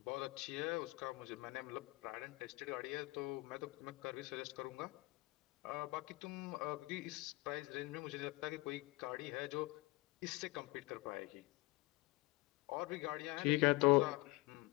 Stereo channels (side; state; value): right; quieter; 22.2 dB